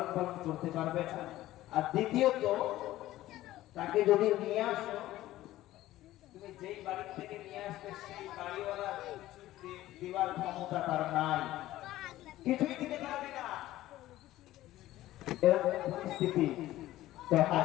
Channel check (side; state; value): right; quieter; 15.4 dB